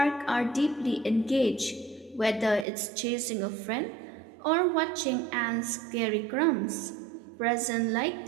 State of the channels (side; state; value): left; drops out; at 2.7 s